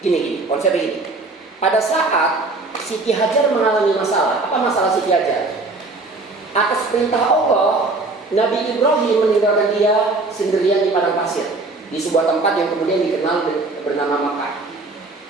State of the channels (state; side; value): quieter; left; 3.4 dB